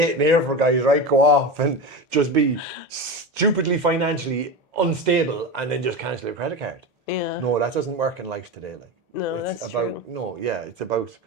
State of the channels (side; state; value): both; normal; correlation 0.22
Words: here for, guys, right? Go off and just be stupidly financially unstable and then just cancel your credit card. Yeah. No, that doesn't work in life today, like. No, it's that's about, true. No, yeah, it's about